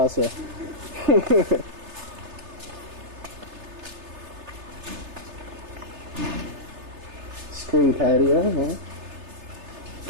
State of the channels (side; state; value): left; late; 3.3 ms